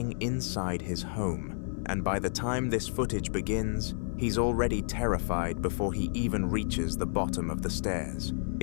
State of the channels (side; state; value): right; silent; 57 dB below the other